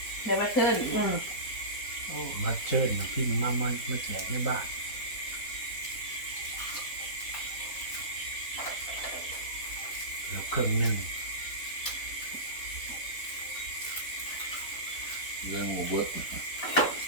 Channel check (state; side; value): late; right; 4.0 ms